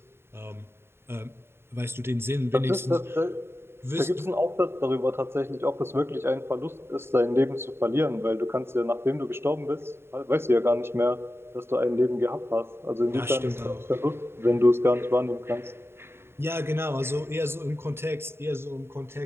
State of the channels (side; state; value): left; late; 0.12 ms